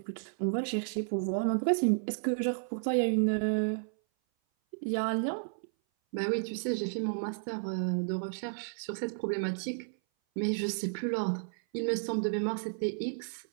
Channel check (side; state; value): left; silent; 56 dB below the other